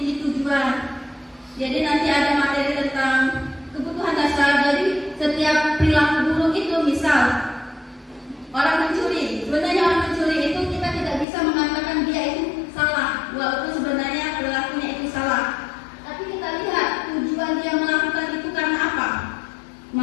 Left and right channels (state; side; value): drops out; right; at 11.2 s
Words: tujuan. Jadi nanti ada materi tentang kebutuhan dasar. Jadi setiap perilaku buruk itu, misal orang mencuri, sebenarnya orang mencuri itu kita tidak bisa mengatakan dia itu salah, walaupun sebenarnya perilakunya itu salah. Tapi kita lihat tujuan dia melakukan itu karena apa.